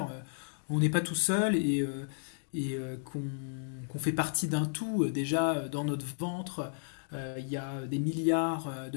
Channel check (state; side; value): silent; right; digital silence